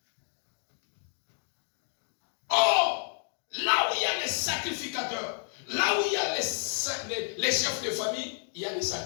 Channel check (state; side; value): silent; right; 57 dB below the other